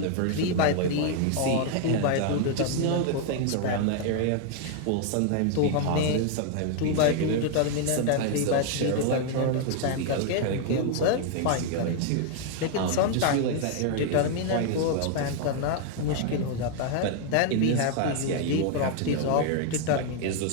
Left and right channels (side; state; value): both; different; correlation 0.00